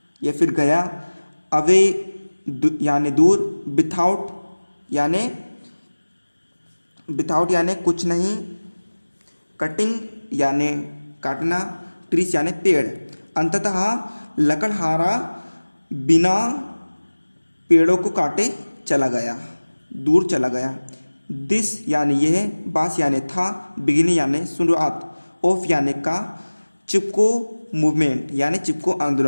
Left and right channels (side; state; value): both; inverted; correlation -1.00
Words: या फिर गया, अवे यानी दूर, विथआउट यानी कुछ नहीं, कटिंग यानी काटना, ट्रीस यानी पेड़। अंततः लकड़हारा बिना पेड़ों को काटे चला गया, दूर चला गया। दिस यानी यह, बास यानी था, बिगिनिंग यानी शुरुआत, ऑफ यानी का, चिपको मूवमेंट यानी चिपको